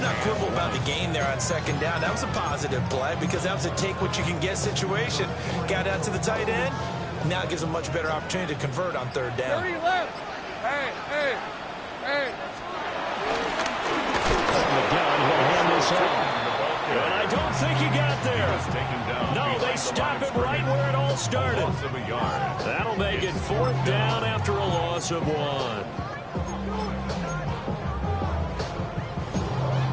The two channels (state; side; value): identical; both; correlation 1.00